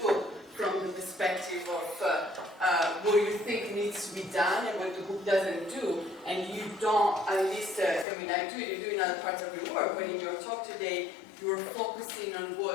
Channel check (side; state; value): right; drops out; at 8.1 s